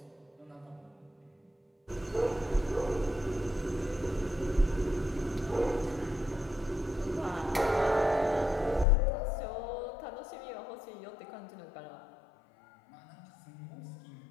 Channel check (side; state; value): right; drops out; at 8.8 s